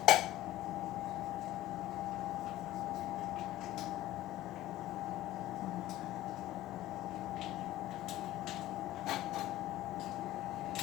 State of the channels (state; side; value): quieter; right; 15.2 dB